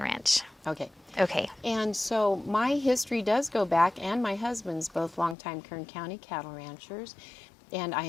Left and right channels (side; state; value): right; drops out; at 5.4 s